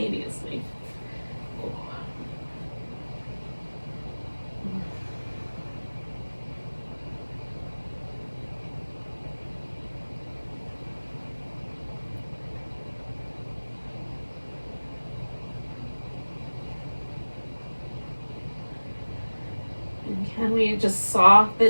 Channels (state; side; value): inverted; both; correlation -1.00